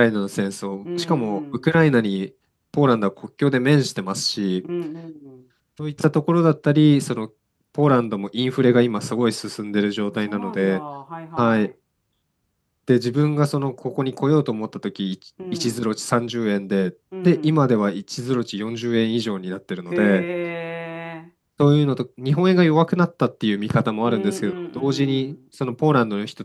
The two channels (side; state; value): both; identical; correlation 1.00